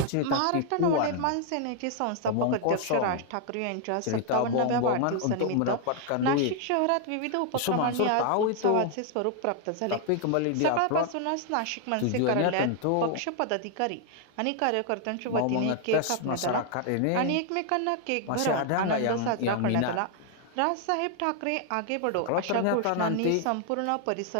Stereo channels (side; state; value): both; different; correlation 0.00